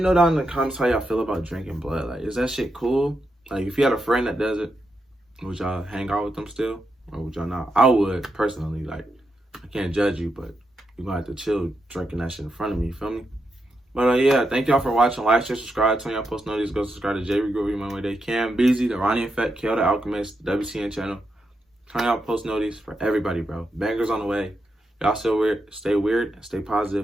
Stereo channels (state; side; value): normal; both; correlation 0.85